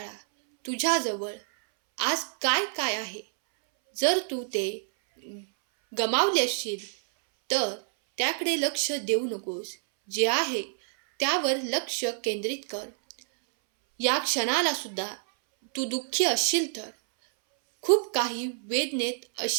तुझ्याजवळ आज काय काय आहे. जर तू ते गमावले असशील तर त्याकडे लक्ष देऊ नकोस. जे आहे त्यावर लक्ष केंद्रित कर. या क्षणाला सुद्धा तू दुःखी असशील तर, खूप काही वेदनेत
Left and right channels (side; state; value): left; silent; 60 dB below the other